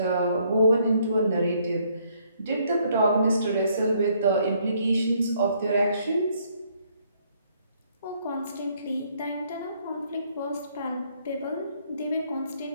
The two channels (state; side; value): inverted; both; correlation -0.67